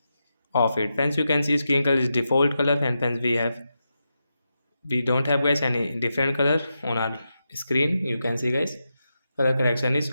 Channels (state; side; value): inverted; both; correlation -0.88